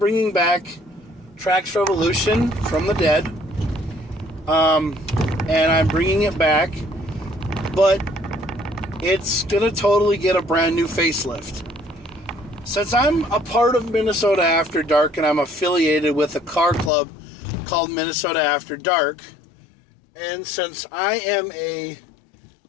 back Trax Revolution from the dead, and I'm bringing it back, but it's gonna totally get a brand new facelift. Since I'm a part of Minnesota After Dark and I'm affiliated with a car club called Minnesota After Dark, and since I am a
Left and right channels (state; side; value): drops out; right; at 16.9 s